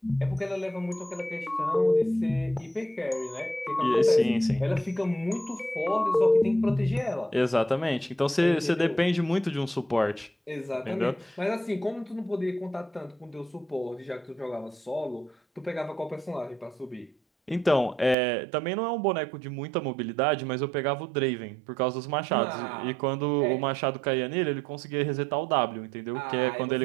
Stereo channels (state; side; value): drops out; left; at 18.2 s